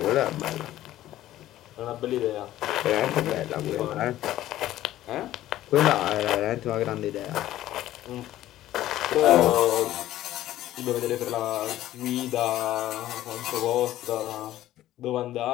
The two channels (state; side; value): quieter; right; 14.0 dB